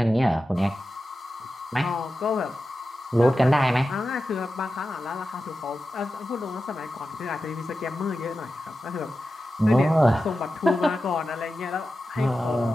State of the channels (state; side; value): normal; both; correlation 0.92